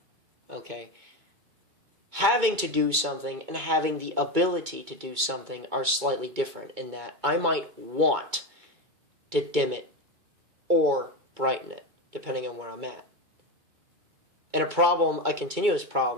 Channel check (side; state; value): left; late; 2.2 ms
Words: Okay? Having to do something and having the ability to do something are slightly different, in that I might want to dim it or brighten it, depending on where I'm at. And a continuous